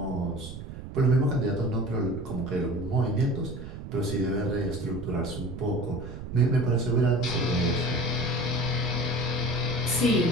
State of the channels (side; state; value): right; noise; rumble, 10 dB below the sound